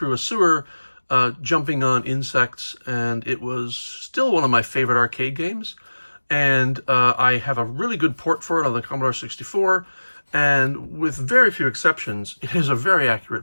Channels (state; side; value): inverted; both; correlation -1.00